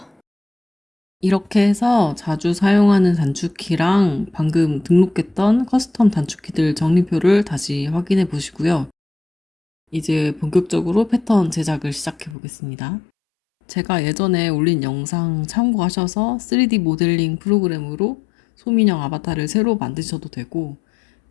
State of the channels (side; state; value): right; drops out; at 12.4 s